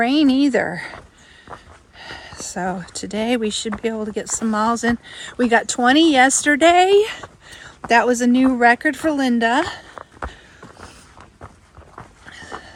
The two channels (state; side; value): identical; both; correlation 1.00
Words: either. So today we should be able to get some miles in. We got 20 yesterday. That was a new record for Linda.